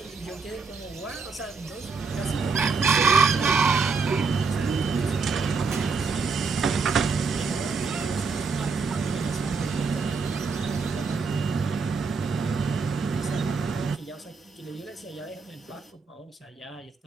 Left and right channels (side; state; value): left; quieter; 4.7 dB